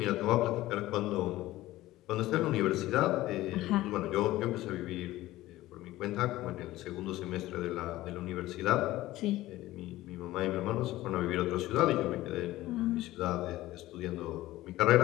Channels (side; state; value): right; quieter; 16.5 dB